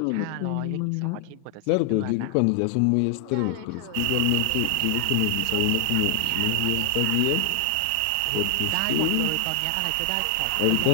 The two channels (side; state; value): both; different; correlation 0.00